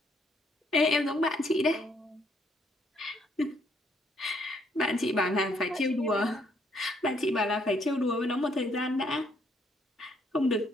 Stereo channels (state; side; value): normal; both; correlation 0.69